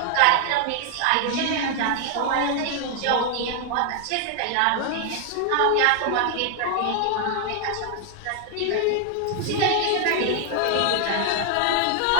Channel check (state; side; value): different; both; correlation 0.00